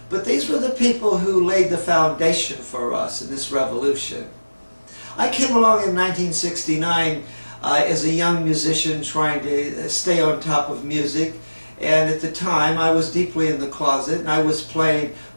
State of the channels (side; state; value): both; inverted; correlation -1.00